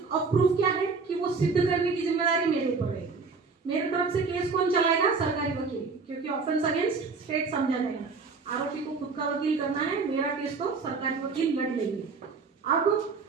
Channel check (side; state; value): left; quieter; 4.6 dB